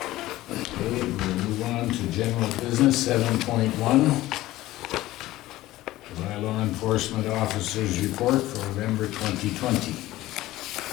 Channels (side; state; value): right; quieter; 16.5 dB